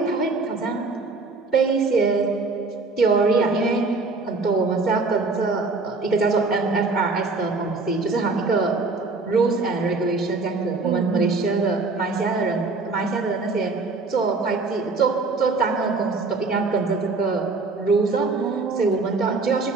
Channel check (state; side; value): quieter; left; 3.8 dB